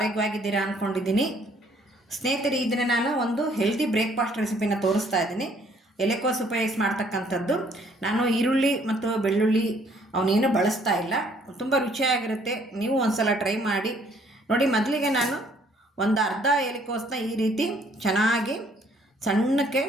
ಅಂದ್ಕೊಂಡಿದ್ದೀನಿ. ಸ್ನೇಹಿತರೆ, ಇದನ್ನು ನಾನು ಒಂದು ಹೆಲ್ದಿ ಬ್ರೇಕ್ಫಾಸ್ಟ್ ರೆಸಿಪಿನ ತೋರಿಸ್ತಾ ಇದ್ದೀನಿ. ಎಲೆಕೋಸು ಉಪಯೋಗಿಸಿ ಮಾಡ್ತಕ್ಕಂಥದ್ದು. ನಾನು ಈರುಳ್ಳಿ ಮತ್ತು ಬೆಳ್ಳುಳ್ಳಿ ಅವನೇನು ಬಳಸ್ತಾ ಇಲ್ಲ. ತುಂಬ ರುಚಿಯಾಗಿರುತ್ತೆ. ನೀವು ಒಂದು ಸಲ ಟ್ರೈ ಮಾಡಿ ನೋಡಿ. ಮೊದಲಿಗೆ ನಾನು ಒಂದು ಅರ್ಧ ಎಲೆಕೋಸನ್ನ ಈ ರೀತಿ ಚೆನ್ನಾಗಿ ಸಣ್ಣಕ್ಕೆ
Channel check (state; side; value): normal; both; correlation 0.62